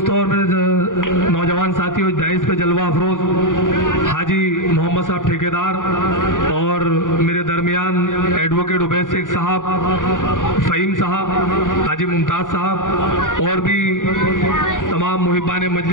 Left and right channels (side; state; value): right; late; 0.88 ms